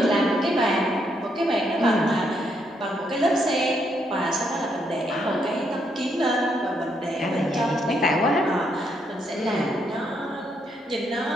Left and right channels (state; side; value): normal; both; correlation 0.75